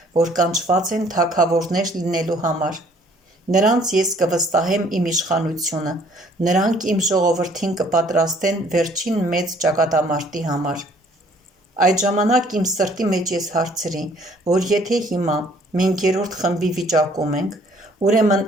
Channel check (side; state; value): both; normal; correlation 0.60